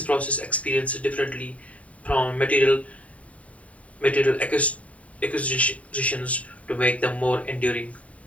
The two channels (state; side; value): late; right; 0.067 ms